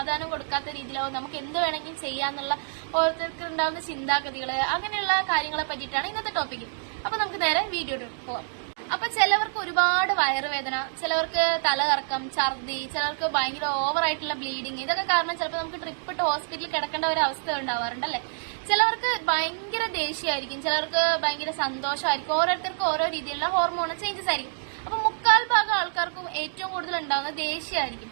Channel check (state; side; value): silent; left; digital silence